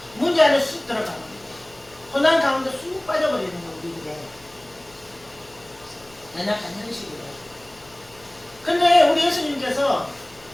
문제 안에 쑥 들어가는 거예요. 고난 가운데 쑥 빠져버리는 거 우리들의 연약한 현실이에요. 근데 우리 예수님께서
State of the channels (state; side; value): noise; left; hum, 27 dB below the sound